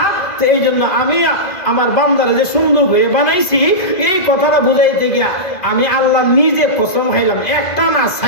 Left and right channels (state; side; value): late; right; 1.9 ms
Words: তো এই জন্য আমি আমার বান্দারে যে সুন্দর করে বানাইছি, এই কথাটা বুঝাইতে গিয়া আমি আল্লাহ নিজে কসম খাইলাম, একটা না